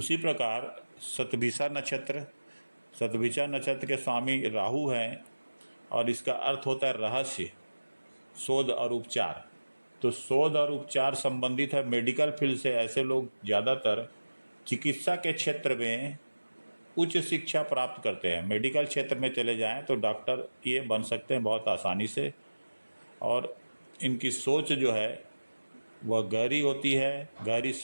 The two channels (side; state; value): both; inverted; correlation -1.00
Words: प्रकार शतभिषा नक्षत्र। शतभिषा नक्षत्र के स्वामी राहु हैं, और इसका अर्थ होता है रहस्य, शोध और उपचार। तो शोध और उपचार संबंधित है मेडिकल फील्ड से। ऐसे लोग ज़्यादातर चिकित्सा के क्षेत्र में उच्च शिक्षा प्राप्त करते हैं। मेडिकल क्षेत्र में चले जाएं तो डॉक्टर ये बन सकते हैं बहुत आसानी से, और इनकी सोच जो है वह गहरी होती है, गहरी